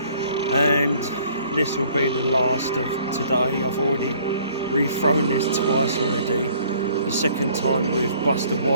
And this will be the last of today. I've already rethrown this twice already. The second time with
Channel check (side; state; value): both; inverted; correlation -0.58